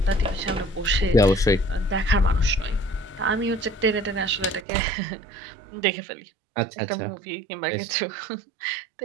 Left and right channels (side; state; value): left; drops out; at 4.7 s